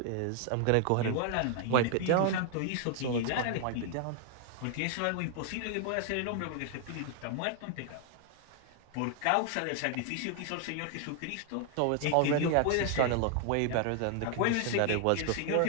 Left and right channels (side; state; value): both; different; correlation 0.00